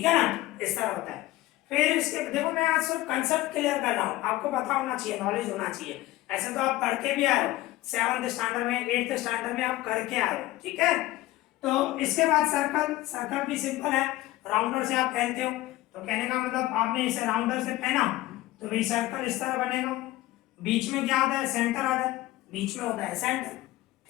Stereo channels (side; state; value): right; quieter; 17.1 dB